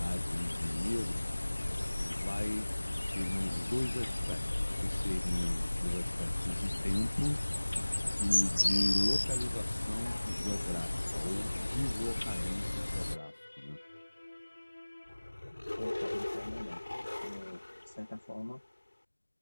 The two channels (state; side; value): inverted; both; correlation -1.00